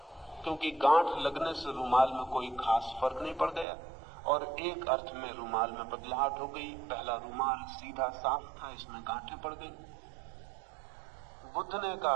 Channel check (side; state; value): left; drops out; at 3.7 s